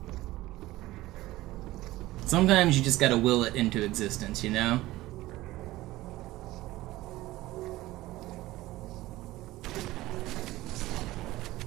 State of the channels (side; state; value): left; quieter; 17.4 dB